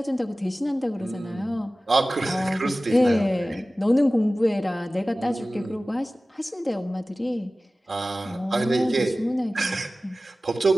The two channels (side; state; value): both; normal; correlation 0.97